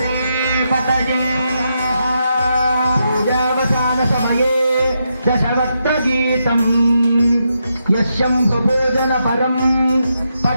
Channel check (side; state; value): both; inverted; correlation -0.83